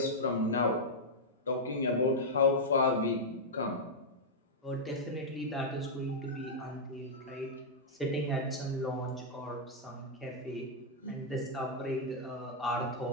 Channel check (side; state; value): both; normal; correlation -0.06